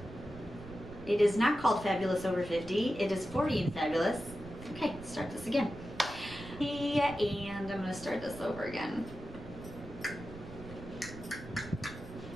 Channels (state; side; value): noise; right; rumble, 14 dB below the sound